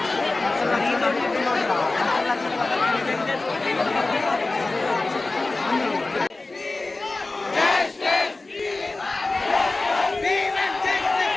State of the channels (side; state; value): right; quieter; 3.3 dB